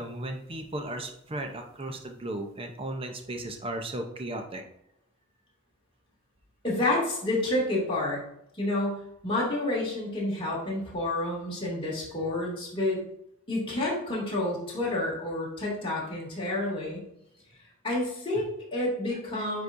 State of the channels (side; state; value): both; normal; correlation 0.24